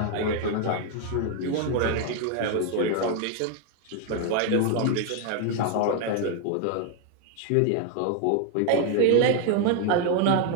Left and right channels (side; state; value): both; different; correlation 0.01